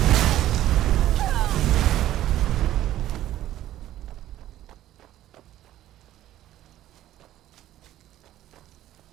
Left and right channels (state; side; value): quieter; left; 13.4 dB